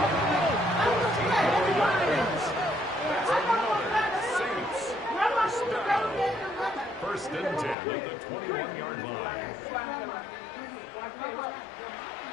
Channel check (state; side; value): drops out; right; at 7.8 s